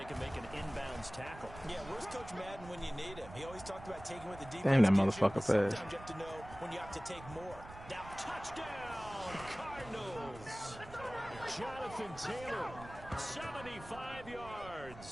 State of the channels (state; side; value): noise; right; rumble, 15 dB below the sound